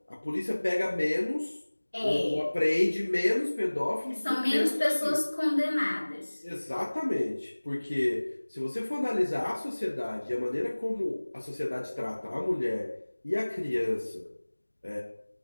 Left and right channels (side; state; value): both; inverted; correlation -1.00